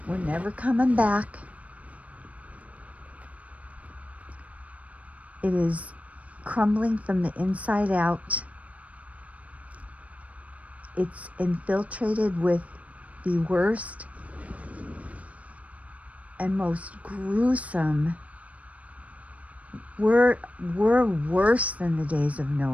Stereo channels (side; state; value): left; late; 0.067 ms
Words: We're never coming back. It is crumbling from the inside out. It's infiltrated with the worst and most gruesome. We're worse than the days of